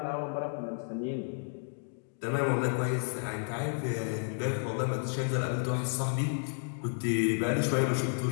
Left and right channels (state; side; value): silent; right; digital silence